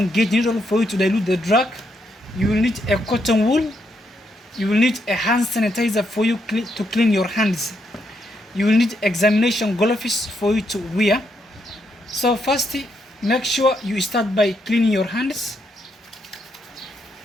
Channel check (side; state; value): both; normal; correlation 0.78